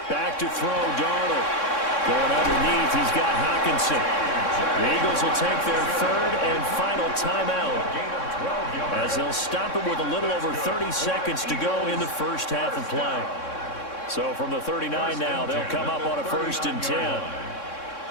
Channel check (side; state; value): right; late; 3.6 ms